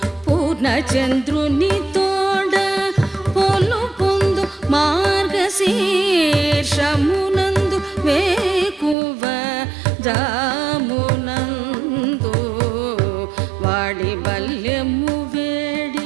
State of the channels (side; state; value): left; drops out; at 9.0 s